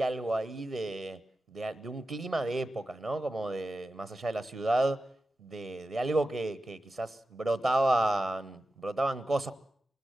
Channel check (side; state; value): both; normal; correlation 0.92